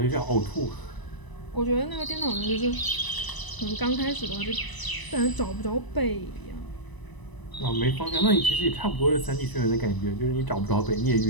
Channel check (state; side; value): late; right; 1.0 ms